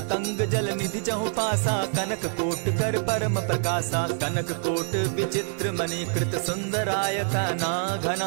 जल निधि चहु पासा, कनक कोट कर परम प्रकाशा। कनक कोट विचित्र मणि कृत सुंदरायता ना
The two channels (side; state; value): left; silent; 61 dB below the other